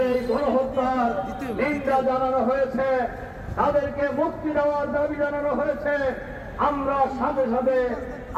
এই গণহত্যার নিন্দা জানানো হয়েছে, তাদেরকে মুক্তি দেওয়ার দাবি জানানো হয়েছে। আমরা সাথে সাথে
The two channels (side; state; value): both; identical; correlation 1.00